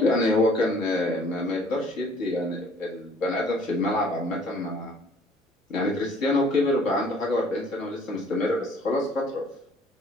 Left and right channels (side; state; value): both; normal; correlation 0.56